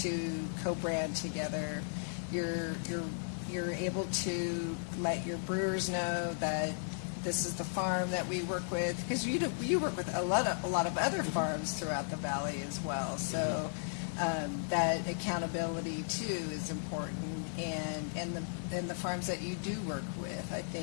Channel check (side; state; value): right; silent; digital silence